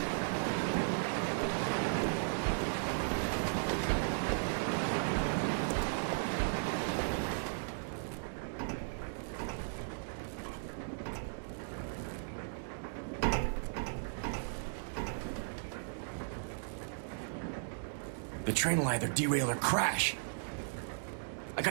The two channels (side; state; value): left; silent; digital silence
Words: The train will either derail or crash. I